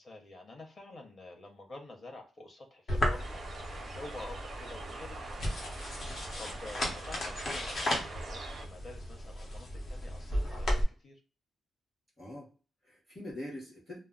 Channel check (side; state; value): both; normal; correlation 0.90